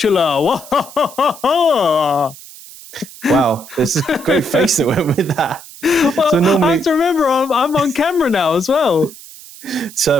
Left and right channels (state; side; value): noise; right; hiss, 18 dB below the sound